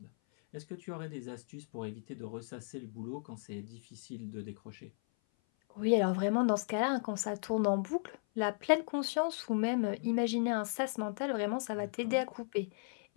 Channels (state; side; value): silent; right; 54 dB below the other